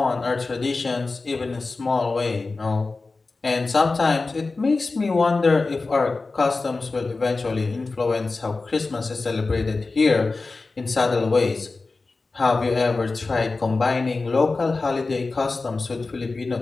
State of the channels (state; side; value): quieter; right; 3.7 dB